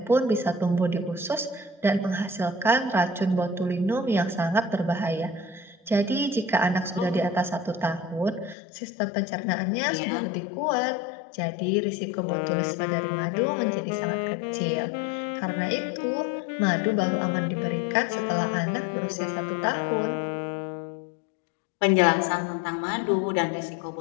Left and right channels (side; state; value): right; drops out; at 8.6 s